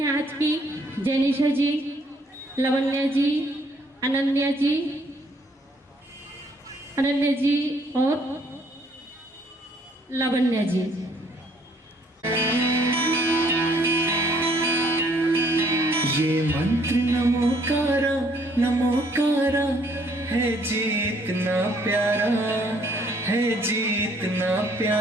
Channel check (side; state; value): both; normal; correlation 0.64